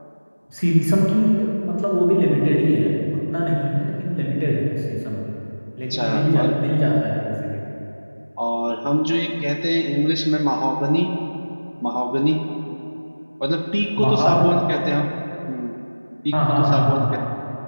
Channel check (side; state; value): both; inverted; correlation -1.00